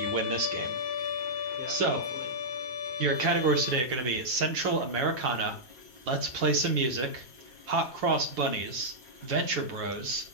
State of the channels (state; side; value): late; left; 8.1 ms